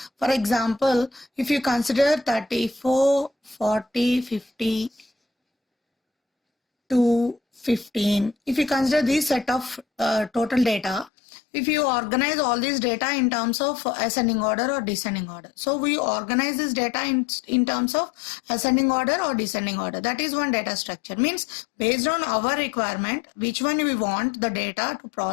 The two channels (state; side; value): drops out; right; at 11.1 s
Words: For example, if you consider 34, 40, 50, 2, 15, if you consider this set of total data, if you organize all this data in terms of ascending order or descending order. So we organize this data in terms of ascending order or descending order. That is one data structure. Means based on our requirement, which one we want the data to